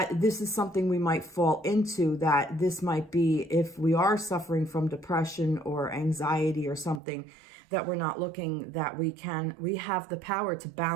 this is something we might fall into, that this might be, if we are suffering from depression or anxiety or something, that we're not looking, that we have the power to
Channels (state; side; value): drops out; left; at 7.0 s